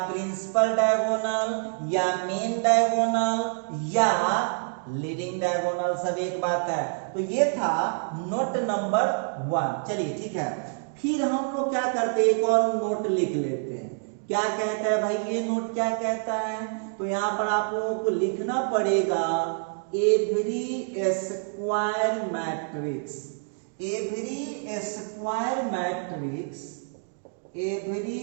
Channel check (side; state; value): left; silent; 60 dB below the other